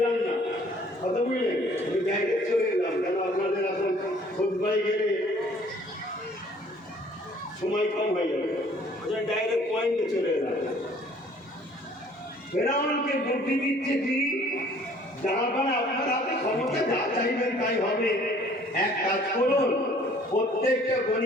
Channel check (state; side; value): normal; both; correlation 0.56